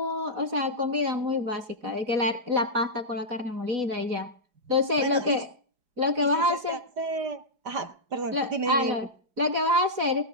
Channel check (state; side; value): late; left; 4.1 ms